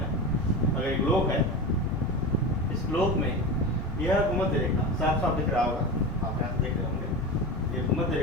अगर एक ग्लोब है, इस ग्लोब में यह भूमध्य रेखा साफ साफ दिख रहा होगा, आप यहाँ से देख रहे होंगे। ये भूमध्य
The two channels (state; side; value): normal; both; correlation 0.25